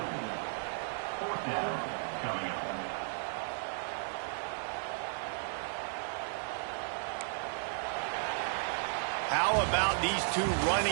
How about these two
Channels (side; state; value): left; silent; 55 dB below the other